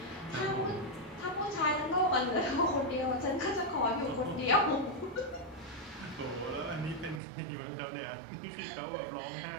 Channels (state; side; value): drops out; left; at 7.2 s